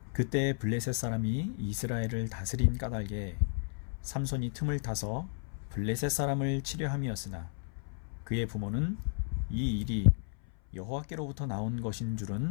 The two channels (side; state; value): right; silent; 56 dB below the other